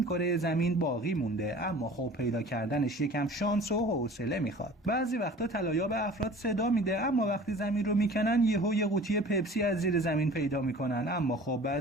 کره زمین باقی مونده. اما خب پیدا کردنش یکم شانس و حوصله میخواد. بعضی وقتا طلاییاب افراد صدا میده اما وقتی زمین رو میکنن یهو یه قوطی پپسی از زیر زمین پیدا میکنن. اما خب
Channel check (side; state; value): both; normal; correlation 0.44